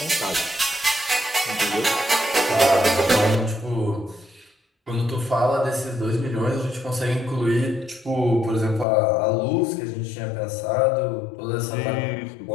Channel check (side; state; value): right; drops out; at 8.8 s